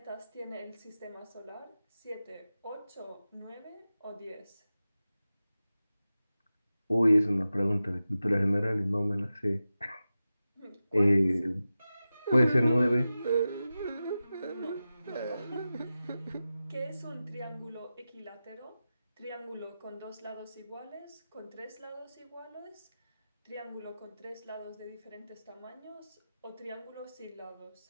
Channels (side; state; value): both; inverted; correlation -0.94